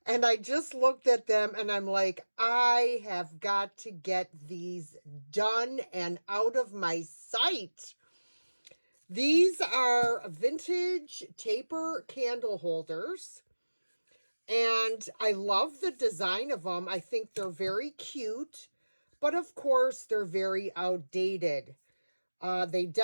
And I just looked at them and I'm like, I have got to get these done and out of my sight. These are vintage taper candle holders. And I love the design of them. I think they're very cute, but of course they're very outdated. They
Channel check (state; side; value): inverted; both; correlation -1.00